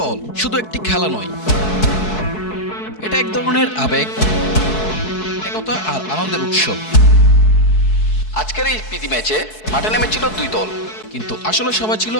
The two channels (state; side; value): late; right; 4.6 ms